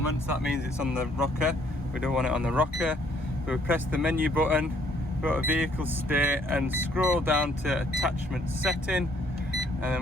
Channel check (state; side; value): normal; both; correlation 0.64